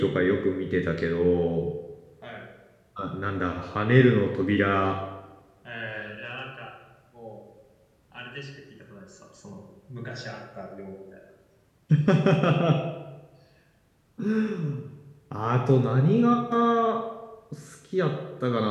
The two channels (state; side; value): identical; both; correlation 1.00